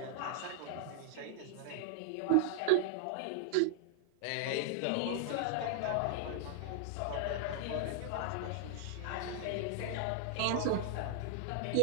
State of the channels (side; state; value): both; different; correlation -0.01